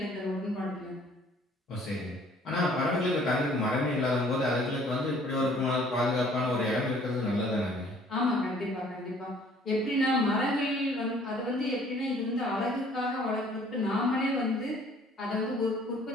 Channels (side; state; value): both; normal; correlation 0.57